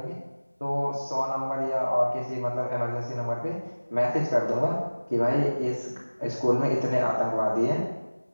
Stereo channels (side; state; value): both; inverted; correlation -1.00